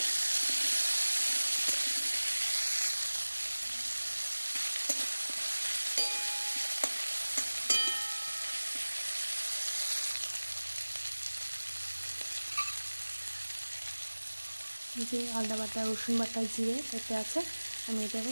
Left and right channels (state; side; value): inverted; both; correlation -1.00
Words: যে আদা বাটা, রসুন বাটা, জিরে এতে আছে, আমি এটাকে